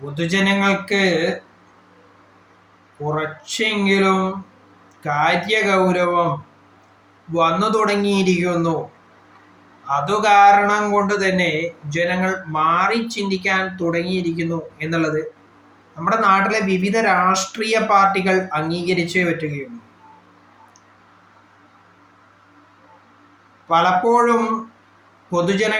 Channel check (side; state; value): both; identical; correlation 1.00